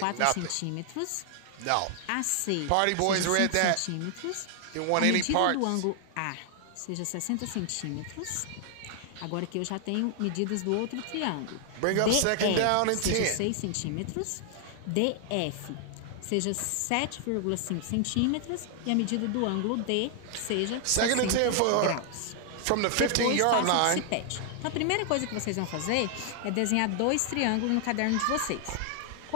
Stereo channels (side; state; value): both; different; correlation 0.00